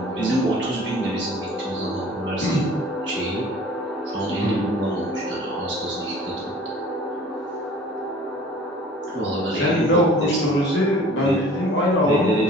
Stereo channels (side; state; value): both; normal; correlation 0.48